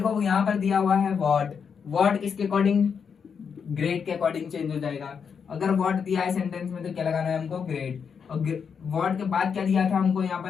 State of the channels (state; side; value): quieter; right; 6.5 dB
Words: यहाँ पर दिया हुआ है व्हाट। व्हाट किसके अकॉर्डिंग, ग्रेट के अकॉर्डिंग चेंज हो जाएगा। अगर व्हाट दिया है सेंटेंस में तो क्या लगाना है हमको, ग्रेट। और व्हाट के बाद क्या दिया था हमको, यहाँ